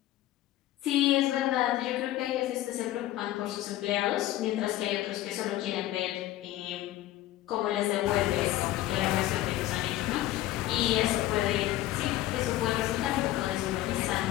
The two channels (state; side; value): quieter; right; 14.7 dB